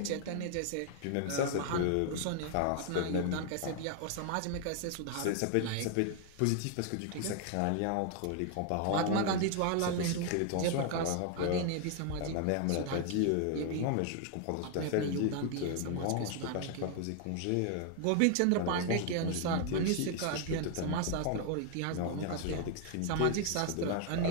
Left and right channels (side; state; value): both; different; correlation 0.00